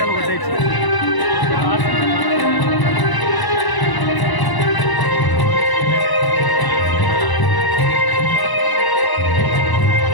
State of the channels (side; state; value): right; late; 1.0 ms